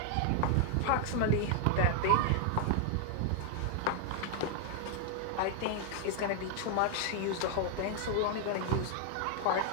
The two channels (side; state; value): both; different; correlation 0.00